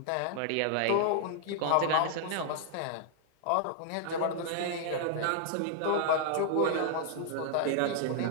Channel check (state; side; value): different; both; correlation 0.00